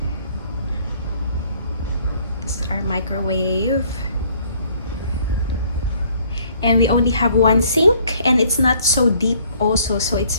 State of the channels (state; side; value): inverted; both; correlation -0.60